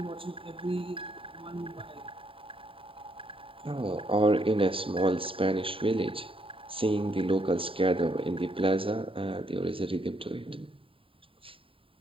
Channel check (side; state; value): left; late; 0.26 ms